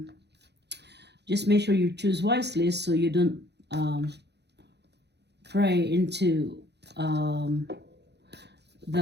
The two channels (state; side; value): late; left; 0.49 ms